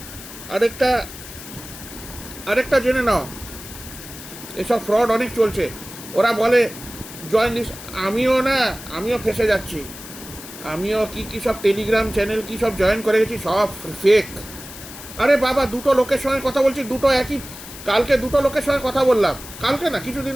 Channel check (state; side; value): noise; left; hiss, 14 dB below the sound